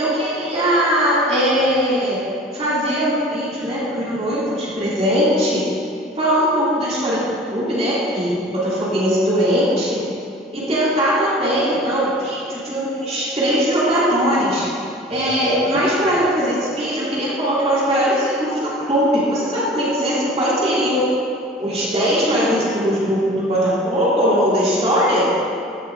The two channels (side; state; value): both; normal; correlation 0.41